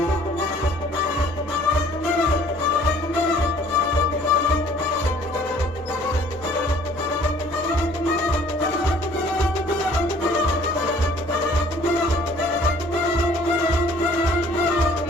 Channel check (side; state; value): both; normal; correlation 0.56